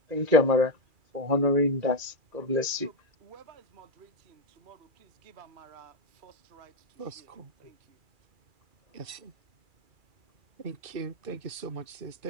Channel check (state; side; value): late; left; 2.4 ms